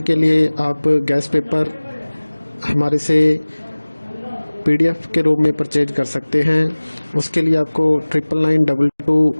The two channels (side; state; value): both; inverted; correlation -1.00